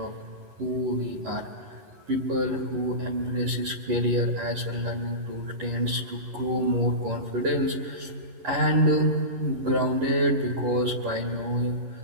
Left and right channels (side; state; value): left; late; 11 ms